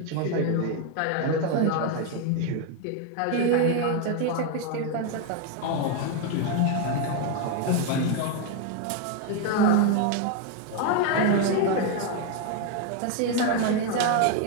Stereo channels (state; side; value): different; both; correlation 0.01